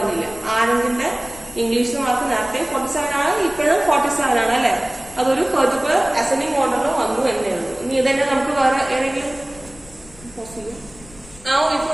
ആനന്ദിന്റെ ഇംഗ്ലീഷ് മാർക്ക് നേരത്തെ 47 ആണ്, ഇപ്പോഴും 47 ആണ് അല്ലെ. അതൊരു പെർട്ടിക്കുലർ അസെൻഡിങ് ഓർഡറിൽ വന്നു എന്നേ ഉള്ളൂ. ഇനി ഇതന്നെ നമുക്ക് വേറെ ഏതെങ്കിലും Now if you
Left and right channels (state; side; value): noise; left; rumble, 22 dB below the sound